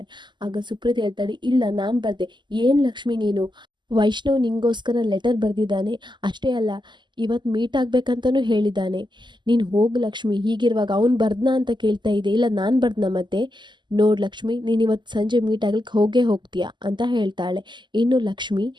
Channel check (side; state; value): left; late; 0.22 ms